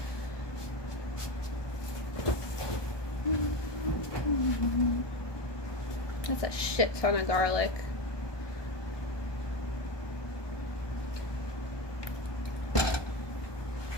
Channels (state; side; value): late; right; 1.2 ms